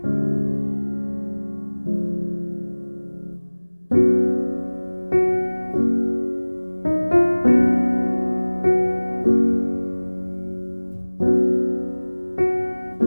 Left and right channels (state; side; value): inverted; both; correlation -1.00